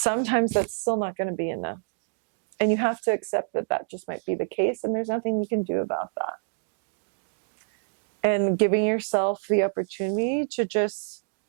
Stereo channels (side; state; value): left; silent; digital silence